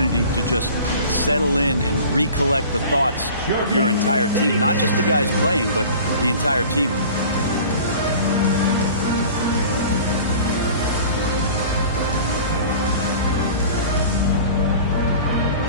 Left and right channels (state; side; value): inverted; both; correlation -0.42